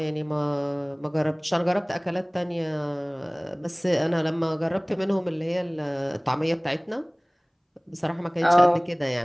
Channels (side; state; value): both; identical; correlation 1.00